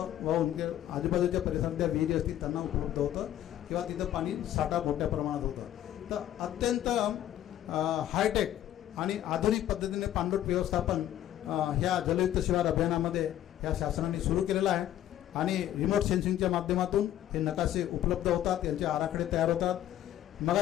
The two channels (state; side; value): quieter; right; 12.2 dB